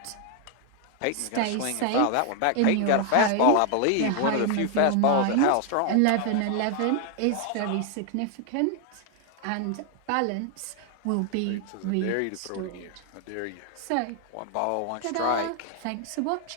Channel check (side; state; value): both; different; correlation 0.00